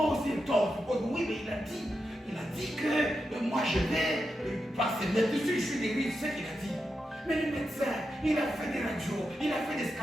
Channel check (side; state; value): both; normal; correlation 0.87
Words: aussi et toi on se pose. Oui, mais il a dit que moi je vais passer là-dessus, je suis guéri, c'est ce qu'il a dit. Mais le médecin, il a fait des radios, il a fait des